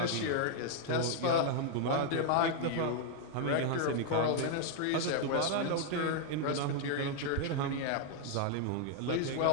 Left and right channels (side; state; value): both; different; correlation 0.00